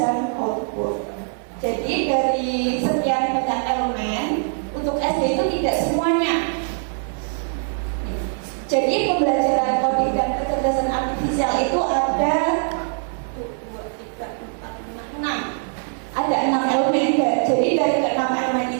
output. Jadi dari sekian banyak elemen untuk SD itu tidak semuanya. Jadi pembelajaran coding dan kecerdasan artifisial itu ada 6 elemen. Jadi dari 6 elemen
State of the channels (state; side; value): silent; left; 60 dB below the other